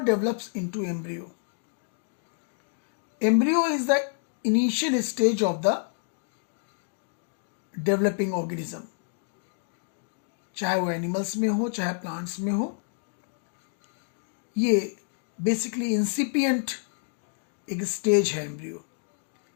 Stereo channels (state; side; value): silent; right; 59 dB below the other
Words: develops into embryo. Embryo is the initial stage of the developing organism. चाहे वो एनिमल्स में हो चाहे प्लांट्स में हो, ये बेसिकली इंसिपिएंट एक स्टेज है embryo